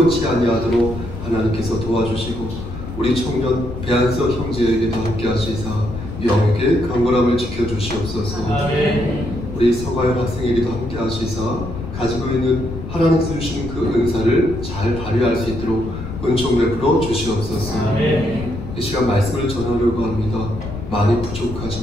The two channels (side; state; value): left; noise; rumble, 9 dB below the sound